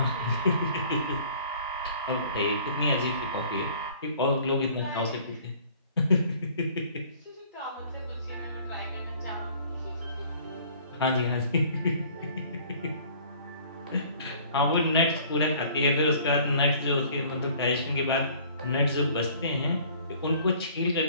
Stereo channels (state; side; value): inverted; both; correlation -0.53